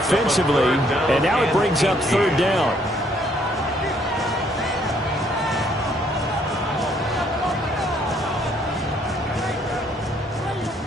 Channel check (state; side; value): normal; both; correlation 0.67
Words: and now it brings up 3rd down.